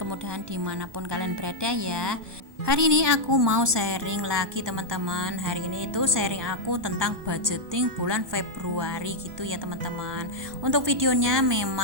dimanapun kalian berada ya. Hari ini aku mau sharing lagi teman-teman. Hari ini itu sharing aku tentang budgeting bulan Februari gitu ya teman-teman. Untuk videonya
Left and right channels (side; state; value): left; late; 1.2 ms